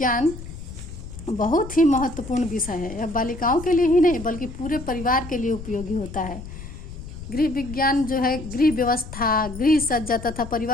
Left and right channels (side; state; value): left; noise; rumble, 11 dB below the sound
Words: बहुत ही महत्वपूर्ण विषय है। यह बालिकाओं के लिए ही नहीं बल्कि पूरे परिवार के लिए उपयोगी होता है। गृह विज्ञान जो है गृह व्यवस्था, गृह सज्जा तथा